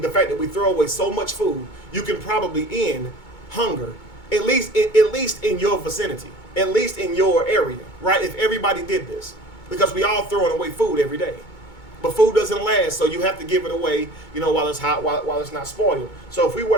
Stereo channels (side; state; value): right; late; 2.2 ms